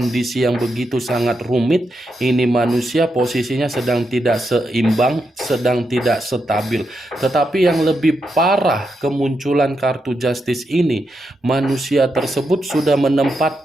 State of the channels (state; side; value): normal; both; correlation 0.84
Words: yang begitu sangat rumit, ini manusia posisinya sedang tidak seimbang, sedang tidak stabil. Tetapi yang lebih parah kemunculan kartu Justice ini, manusia tersebut sudah